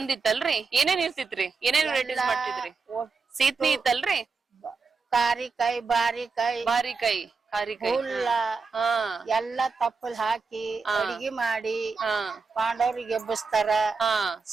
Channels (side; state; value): left; quieter; 4.6 dB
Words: ಇತ್ತಲ್ರಿ ಏನೇನ್ ಇರ್ತಿತ್ರಿ ಏನೇನ್ ವೆರೈಟೀಸ್ ಮಾಡ್ತಿದ್ರಿ ಸೀತ್ನಿ ಇತ್ತಲ್ರಿ ಕಾರಿಕಾಯಿ ಬಾರಿಕಾಯಿ ಬಾರಿಕಾಯಿ ಕಾರಿಕಾಯಿ ಹುಲ್ಲ ಹಾ ಎಲ್ಲಾ ತಪ್ಪಲ್ ಹಾಕಿ ಅಡಿಗೆ ಮಾಡಿ ಹಾ ಪಾಂಡವ್ರಿಗೆ ಎಬ್ಬಿಸ್ತಾರ ಹಾ